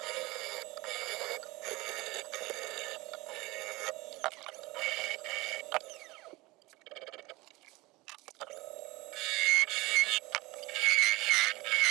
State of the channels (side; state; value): left; quieter; 21.6 dB